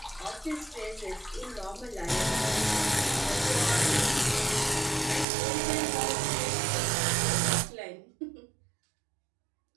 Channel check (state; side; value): drops out; left; at 5.2 s